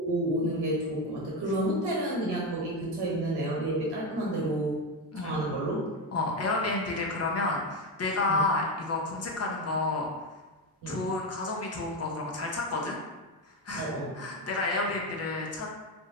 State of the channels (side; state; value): both; normal; correlation 0.12